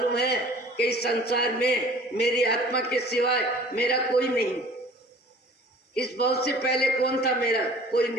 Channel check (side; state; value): both; normal; correlation 0.48